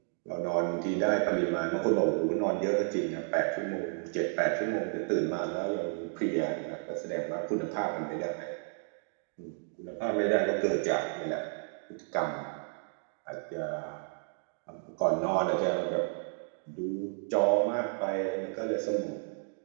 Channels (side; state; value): left; silent; 56 dB below the other